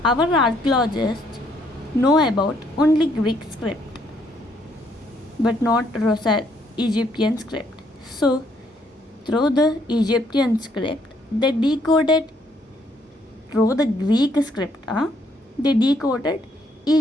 Our archaeologists know about only Greek script, but not Egyptian script. So, through the Egyptian script, they decoded through the Greek script. They decoded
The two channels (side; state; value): both; normal; correlation 0.69